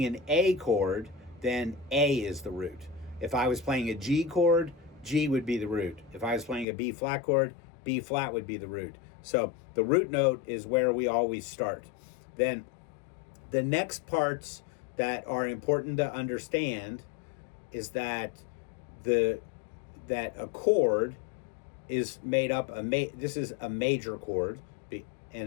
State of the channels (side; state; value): right; drops out; at 6.7 s